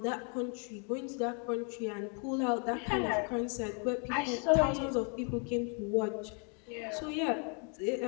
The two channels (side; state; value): right; quieter; 39.1 dB